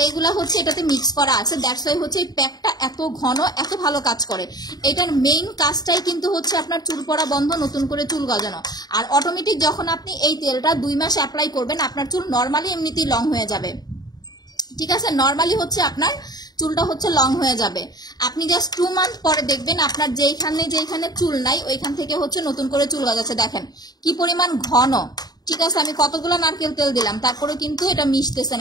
এইগুলা হচ্ছে এটাতে মিক্স করা আছে। দ্যাটস ওয়াই হচ্ছে এই প্যাকটা এত ঘন, এত ভালো কাজ করে। এটার মেইন কাজটাই কিন্তু হচ্ছে আপনার চুল পড়া বন্ধ, নতুন করে চুল গজানো। আর অটোমেটিক যখন আপনি এই তেলটা 2 মাস অ্যাপ্লাই করবেন, আপনার চুল নর্মালি এমনিতেই লং হয়ে যাবে। ঠিক আছে, নর্মালি হচ্ছে আপনার চুলটা হচ্ছে লং হয়ে যাবে। আপনি জাস্ট 2 মান্থ পরে দেখবেন আপনার যেখানে চুল নাই ওইখান থেকে হচ্ছে নতুন করে চুল গজাচ্ছে। দেখেন কি পরিমাণ ঘন। ঠিক আছে, আমি কতগুলো নারকেল তেল দিলাম, তারপরে কিন্তু এটা মিশতেছে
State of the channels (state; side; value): late; right; 0.19 ms